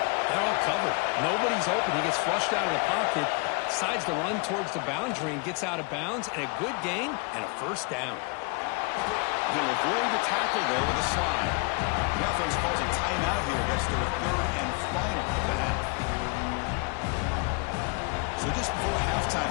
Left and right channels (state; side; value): quieter; right; 31.2 dB